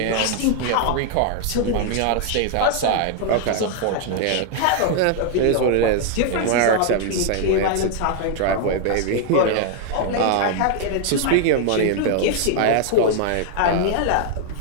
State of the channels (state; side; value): different; both; correlation 0.00